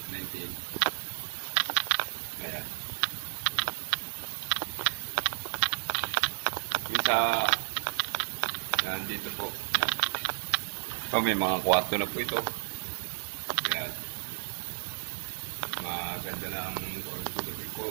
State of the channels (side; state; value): left; silent; digital silence